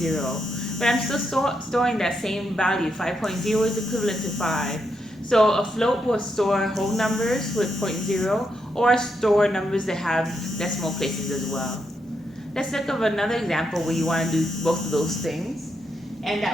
But I'm still storing that same value. 5.0 is equivalent to 5. So a float will store whole numbers with 0.0 or store numbers that have decimal places as well. Let's look at another example where you want to do both of those things, and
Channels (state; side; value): normal; both; correlation 0.81